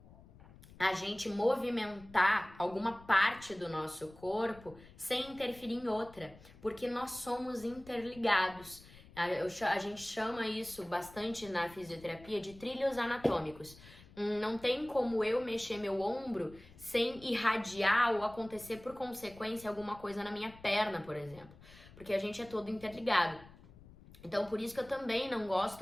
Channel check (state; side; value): noise; left; rumble, 21 dB below the sound